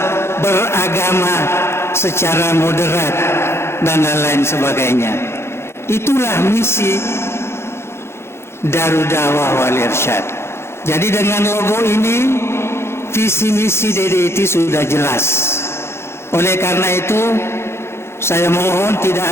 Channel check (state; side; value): late; right; 0.12 ms